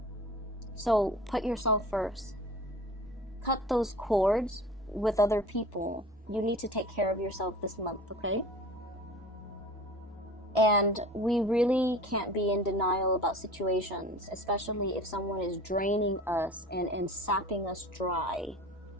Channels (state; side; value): normal; both; correlation 0.40